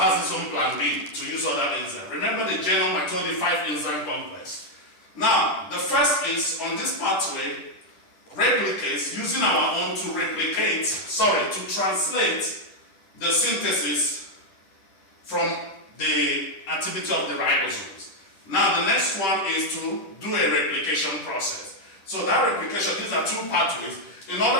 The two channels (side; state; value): right; late; 10 ms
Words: its own plan B to use other enzymes. Remember the genome, I told you 5 enzyme complex. Now, the first is on this pathway, replicates, using our own to to translate the synthesis from the activity of the ribosomes. Now, the next one is to do a replication process. So that replication, these are 2 pathways, in